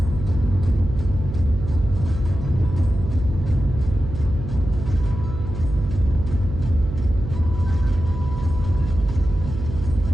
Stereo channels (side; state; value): right; noise; hum, 7 dB below the sound